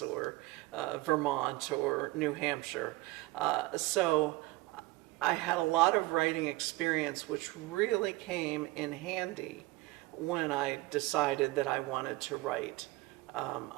or Vermont or New Hampshire. So I had a lot of writing experience, which really came in handy when I decided that I wanted to write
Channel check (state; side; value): quieter; left; 20.2 dB